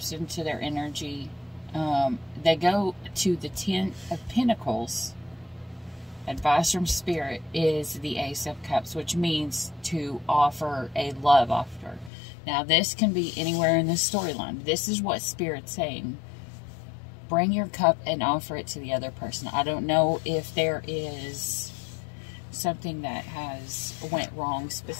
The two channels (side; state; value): right; drops out; at 12.1 s